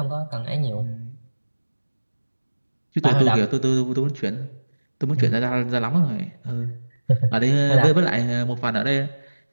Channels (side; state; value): both; inverted; correlation -1.00